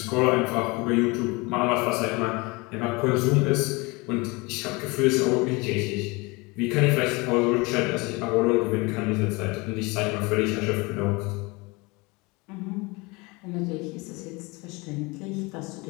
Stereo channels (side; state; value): right; quieter; 25.9 dB